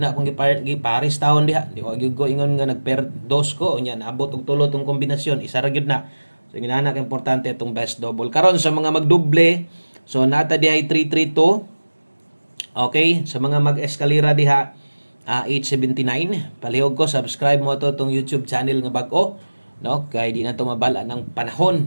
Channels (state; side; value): inverted; both; correlation -1.00